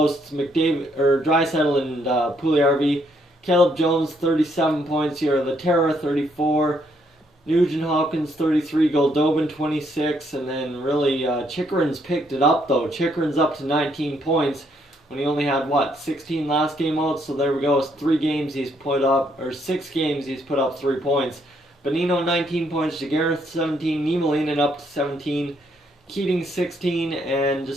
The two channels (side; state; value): both; normal; correlation 0.72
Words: It's Draisaitl and Puljujarvi. Caleb Jones, 37 points here. Laterra, 34. Nugent-Hopkins, 33. Goldobin, 26. And then really, Chychrun's picked it up, though. Chychrun's up to 19 points when he only had, 16 last game out. So there we go. It's 3 games he's put up, or 6 games he's put up 3 points. Bonino, 19 points. Giguere, 17. Niemelainen up to 17. Keating 16, and